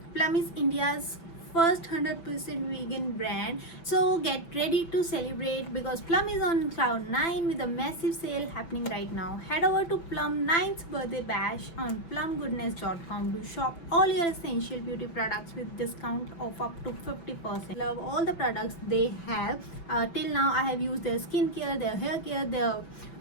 Plum is India's first 100% vegan brand, so get ready to celebrate because Plum is on cloud 9 with a massive sale happening right now. Head over to Plum 9th birthday bash on plumgoodness.com to shop all your essential beauty products with discount of up to 50%. Love all the products they have. Till now I have used their skincare, their hair care, their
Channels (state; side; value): late; right; 6.0 ms